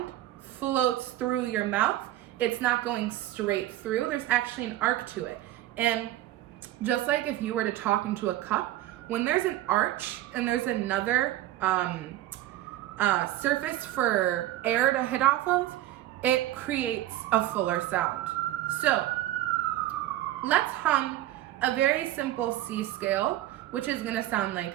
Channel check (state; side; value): quieter; left; 14.5 dB